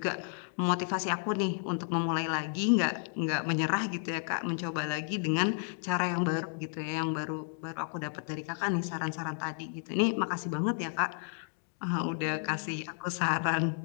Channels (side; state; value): right; silent; 56 dB below the other